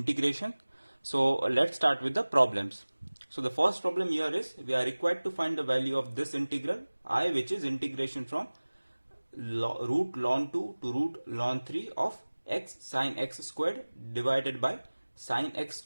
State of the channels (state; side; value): inverted; both; correlation -1.00